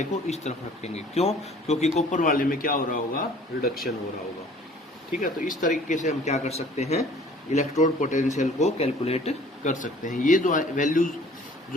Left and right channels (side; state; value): both; normal; correlation 0.52